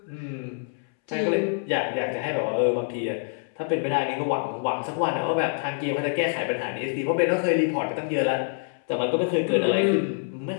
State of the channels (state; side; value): silent; right; 61 dB below the other